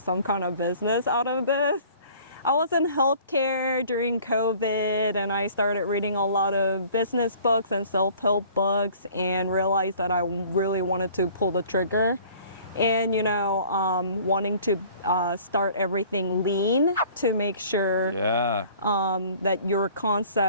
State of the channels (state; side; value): inverted; both; correlation -0.51